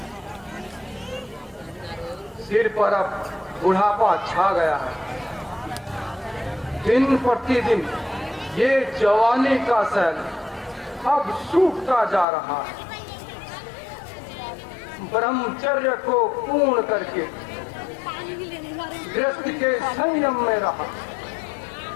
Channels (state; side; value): drops out; right; at 12.2 s